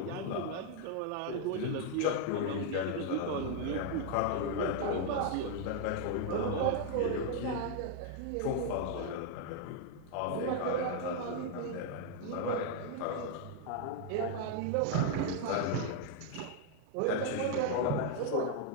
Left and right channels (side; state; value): both; different; correlation 0.00